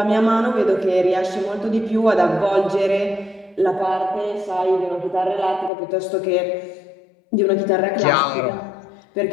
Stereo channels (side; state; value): right; drops out; at 5.7 s